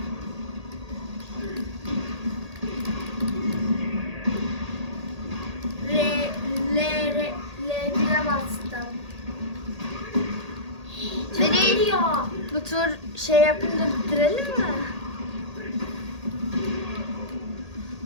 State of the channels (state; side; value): late; left; 1.8 ms